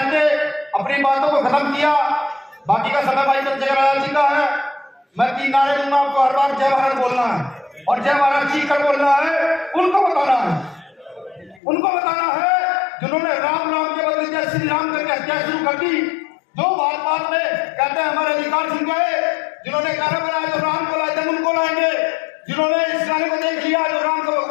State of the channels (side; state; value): right; drops out; at 11.6 s